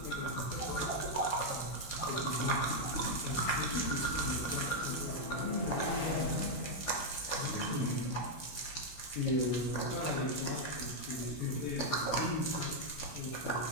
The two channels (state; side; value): late; right; 16 ms